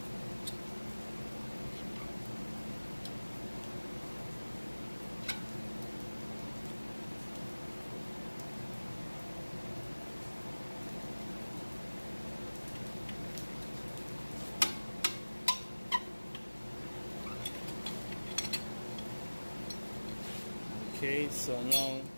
Okay, so now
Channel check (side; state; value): both; inverted; correlation -1.00